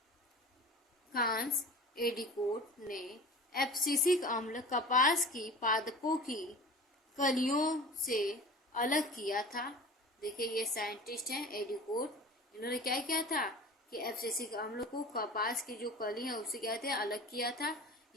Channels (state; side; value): normal; both; correlation 0.39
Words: कांस एडिकोट ने एब्सिसिक अम्ल कपास की पादपों की कलियों से अलग किया था। देखिए ये साइंटिस्ट हैं एडिकोट, इन्होंने क्या किया था कि एब्सिसिक अम्ल को कपास की जो कली है उससे क्या थे अलग किया था।